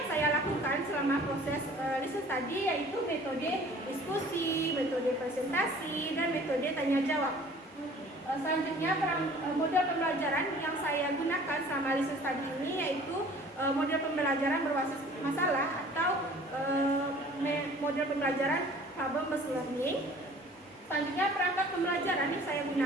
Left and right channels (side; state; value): both; normal; correlation 0.49